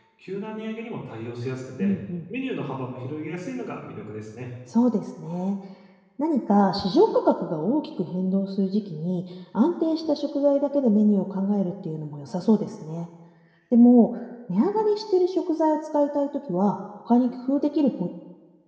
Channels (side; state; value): both; identical; correlation 1.00